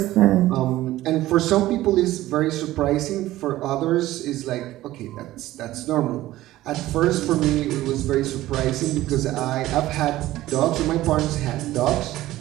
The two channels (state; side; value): quieter; left; 15.7 dB